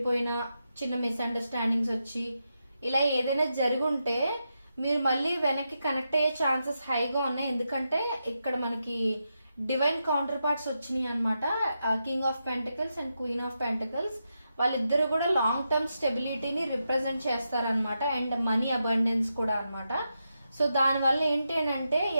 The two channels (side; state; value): both; inverted; correlation -0.86